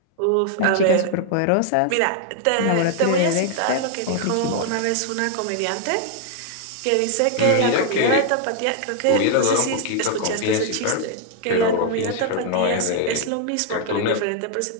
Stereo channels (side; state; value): both; different; correlation 0.00